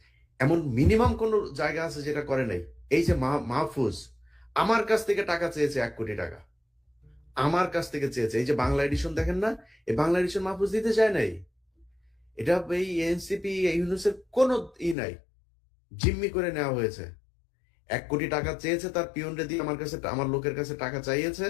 এমন মিনিমাম কোন জায়গা আছে যেটা করে নাই? এই যে মাহফুজ আমার কাছ থেকে টাকা চেয়েছে, 1 কোটি টাকা আমার কাছ থেকে চেয়েছে। এই যে বাংলা এডিশন দেখেন না, এই বাংলা এডিশন মাহফুজ দিতে চায় নাই। এটা এই এনসিপি ইউনুসের কোনো নাই, জিম্মি করে নেওয়া হয়েছে। 1 কোটি টাকা চেয়েছে, তার পিয়নরে দিয়ে আমার কাছে, আমার লোকের কাছে টাকা চাইয়েছে।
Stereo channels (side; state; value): right; drops out; at 15.0 s